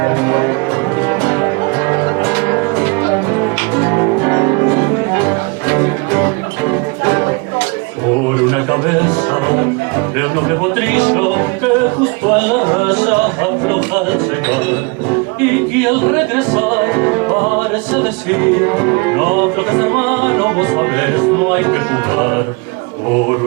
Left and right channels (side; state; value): left; quieter; 29.3 dB